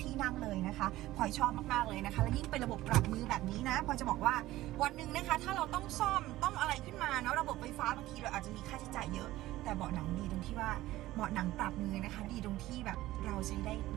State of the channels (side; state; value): left; quieter; 16.3 dB